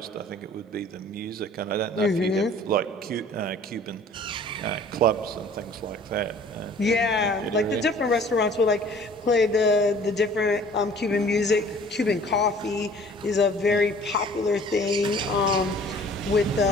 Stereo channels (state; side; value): normal; both; correlation 0.51